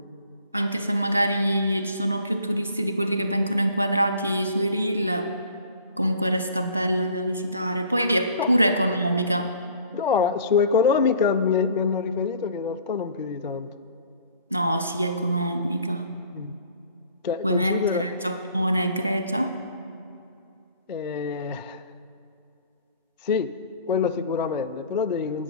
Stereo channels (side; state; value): both; inverted; correlation -0.52